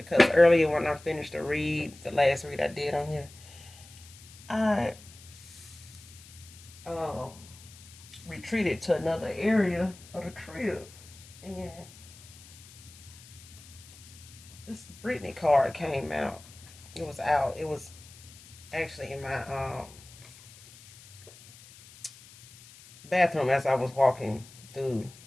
earlier when I finished the read, the last read I did on here, I uh, retreated to another area of the crib. And this Brittany card came out. It was out. It was actually in my bathroom as I was walking through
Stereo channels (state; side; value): noise; left; hiss, 20 dB below the sound